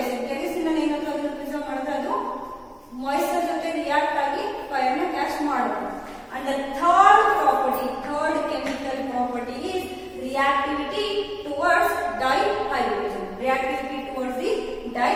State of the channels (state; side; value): identical; both; correlation 1.00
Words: Kerosene preserve moisture jote react agi fire na catch ಮಾಡುತ್ತೆ. And the third chemical property is reactivity towards dihydrogen. Reactivity towards the